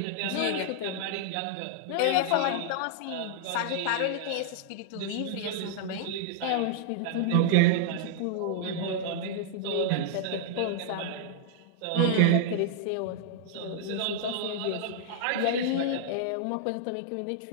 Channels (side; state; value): both; different; correlation -0.01